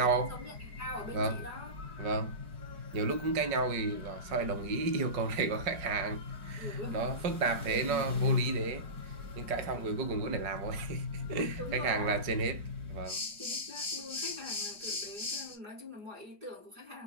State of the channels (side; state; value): left; late; 4.9 ms